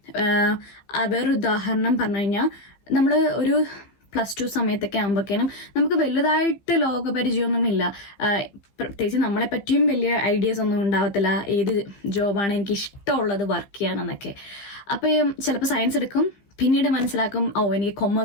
വേറൊരു ഉദാഹരണം പറഞ്ഞു കഴിഞ്ഞാൽ, നമ്മൾ ഒരു +2 സമയത്തൊക്കെ ആകുമ്പോഴേക്കും നമുക്ക് വലുതായിട്ട് ലോകപരിചയമൊന്നുമില്ല. പ്രത്യേകിച്ച് നമ്മളെ പറ്റിയും വലിയ ഐഡിയാസ് ഒന്നും ഉണ്ടാവത്തില്ല, ഏത് ജോബാണ് എനിക്ക് ഇഷ്ടമുള്ളത് വർക്ക് ചെയ്യാനെന്നൊക്കെ. അപ്പോൾ ചിലപ്പോൾ സയൻസ് എടുക്കും, പിന്നീട് മനസ്സിലാക്കും എനിക്ക്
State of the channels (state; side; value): late; right; 15 ms